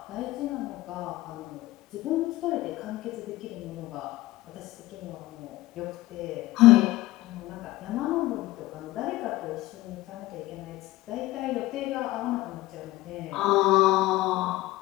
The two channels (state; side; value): quieter; right; 17.8 dB